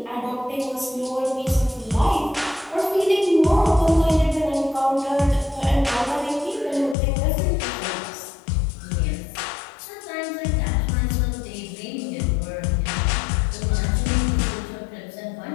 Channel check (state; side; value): drops out; right; at 7.0 s